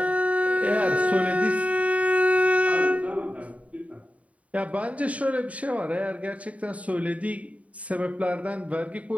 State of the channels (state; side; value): late; left; 0.067 ms